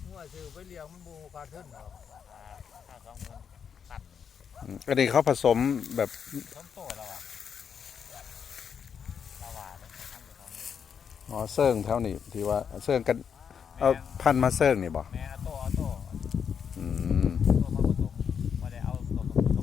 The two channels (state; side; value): quieter; right; 7.2 dB